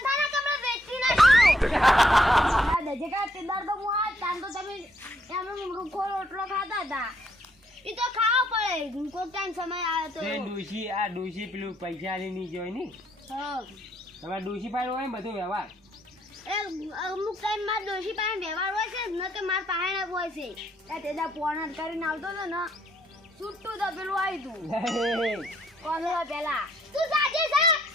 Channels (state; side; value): normal; both; correlation 0.71